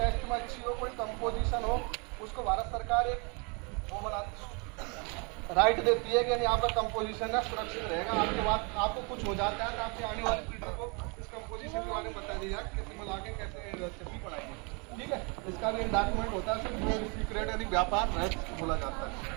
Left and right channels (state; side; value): quieter; left; 32.5 dB